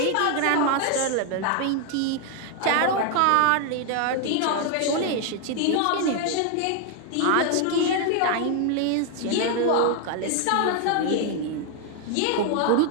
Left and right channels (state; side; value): different; both; correlation 0.01